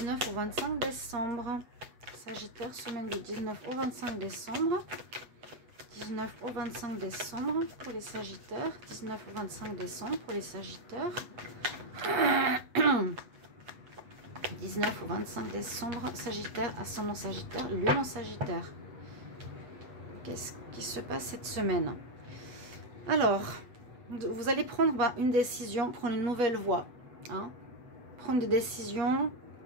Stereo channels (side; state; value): left; late; 8.2 ms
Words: au 25 décembre. Sagittaire, semaine du 19 au 25 décembre. 19 au 25 décembre pour les Sagittaires. 19 au 25 décembre pour les Sagittaires. 19 au 25 décembre, Sagittaire, ascendant Sagittaire, Lune en Sagittaire. Qu'est-ce qui se passe cette semaine? Alors, vous allez prendre une décision, prendre une nouvelle voie. Prendre des décisions,